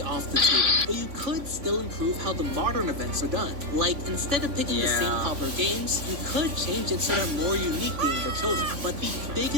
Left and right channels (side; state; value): left; late; 3.5 ms